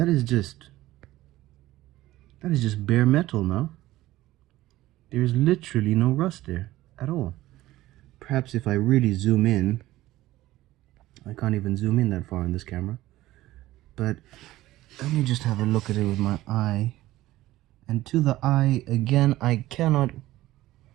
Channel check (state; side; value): quieter; left; 16.2 dB